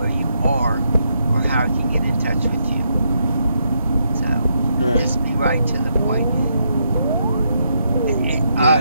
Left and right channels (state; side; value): inverted; both; correlation -0.79